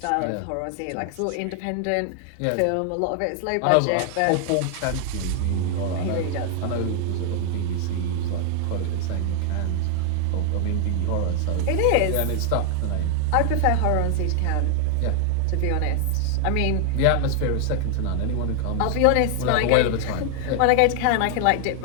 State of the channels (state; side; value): different; both; correlation 0.00